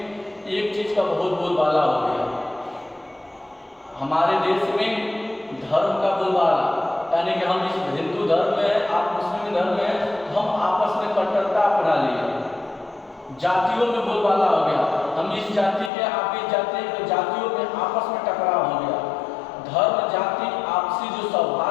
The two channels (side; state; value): right; drops out; at 15.9 s